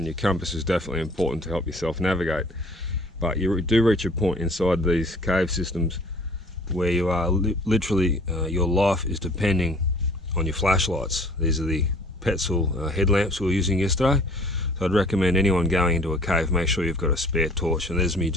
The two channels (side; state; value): both; normal; correlation 0.52